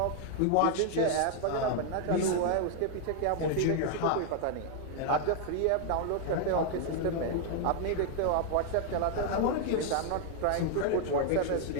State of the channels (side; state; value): both; different; correlation 0.00